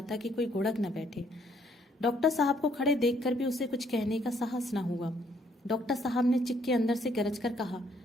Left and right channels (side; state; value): both; normal; correlation 0.67